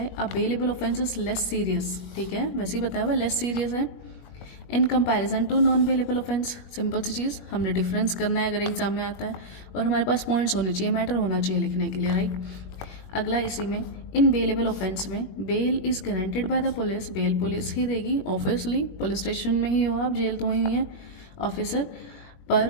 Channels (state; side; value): late; right; 21 ms